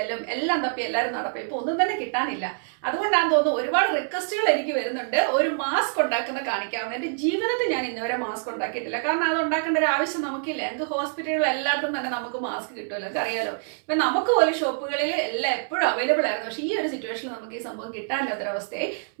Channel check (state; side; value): silent; left; 61 dB below the other